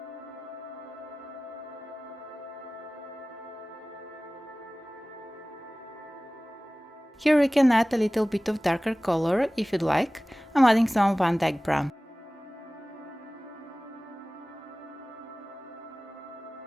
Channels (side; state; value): both; normal; correlation 0.98